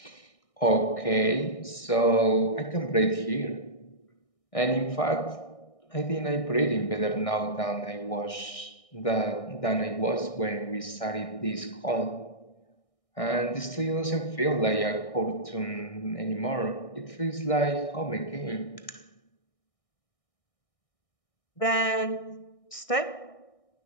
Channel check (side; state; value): right; late; 1.6 ms